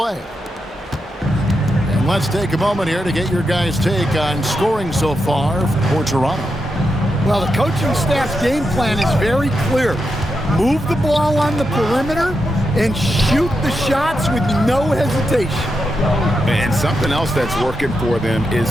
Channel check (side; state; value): both; normal; correlation 0.86